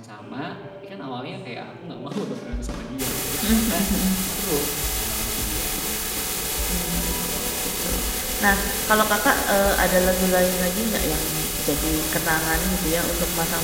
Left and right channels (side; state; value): both; identical; correlation 1.00